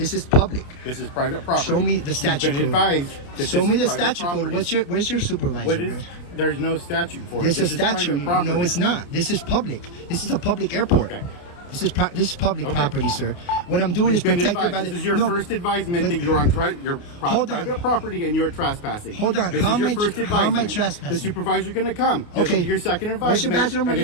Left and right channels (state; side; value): late; right; 29 ms